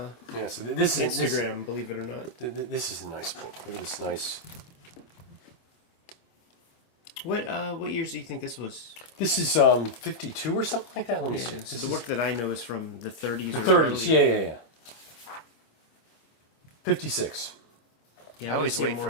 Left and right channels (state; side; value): late; right; 25 ms